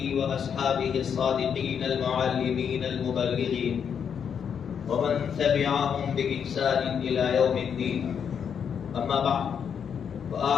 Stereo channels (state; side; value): quieter; right; 7.5 dB